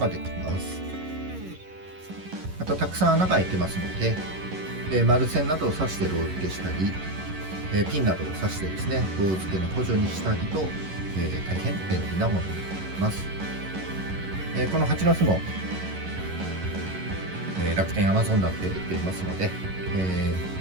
できます。またたくさん穴が開いてますので、丸線などを刺してロー付けしたり、ピンなどを刺してですねロー付けの補助にしたりと、大変便利なものになります。この蜂の巣も、楽天、アマゾンなどで売っていますので、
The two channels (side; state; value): left; late; 11 ms